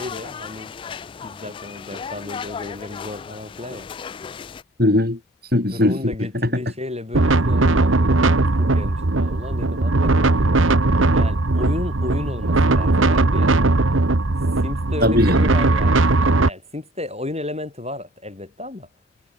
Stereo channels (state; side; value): normal; both; correlation 0.55